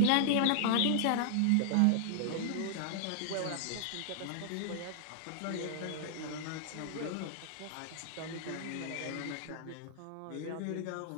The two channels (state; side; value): different; both; correlation -0.01